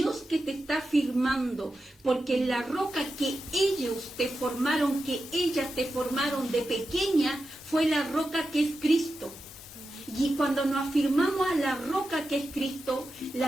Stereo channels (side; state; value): both; normal; correlation 0.90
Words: que te está afirmando, porque la roca que ellas te formaron de pequeña, fue la roca que es Cristo. Y cuando nos afirmamos a la roca que es Cristo, la